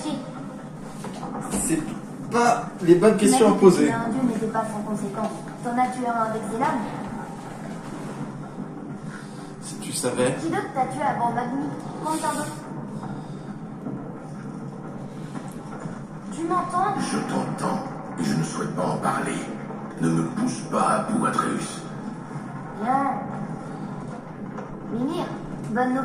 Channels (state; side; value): identical; both; correlation 1.00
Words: C'est pas les bonnes questions à poser. Un dieu n'était pas sans conséquence. T'en as tué un avec ses lames? Si tu savais. Qui d'autre t'a tué avant Magni? Combien d'autres? Tu m'entends? Je t'entends et je ne souhaite pas en parler. Ne me pousse pas à bout, Atreus. Bien. Mimir, bonne